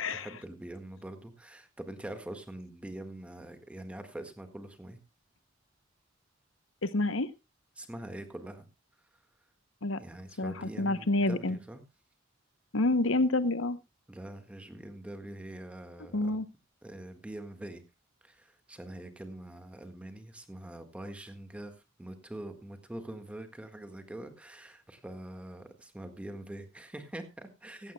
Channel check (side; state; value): both; normal; correlation 0.42